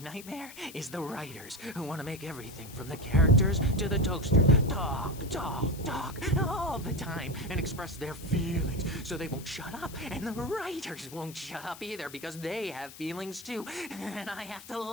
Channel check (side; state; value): left; noise; hiss, 16 dB below the sound